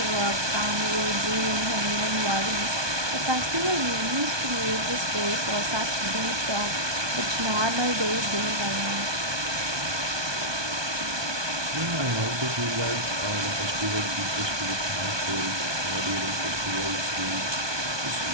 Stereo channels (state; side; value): late; left; 1.2 ms